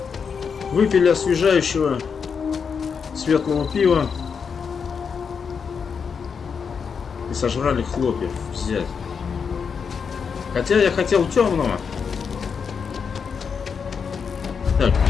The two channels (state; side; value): quieter; right; 6.2 dB